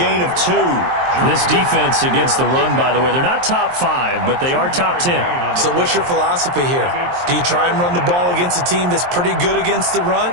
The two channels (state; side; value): late; left; 23 ms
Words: of 2. This defense against the run, by the way, they're not top 5, but they are top 10. So what's your philosophy here? Do you try and run the ball against a team that's pretty good against the run?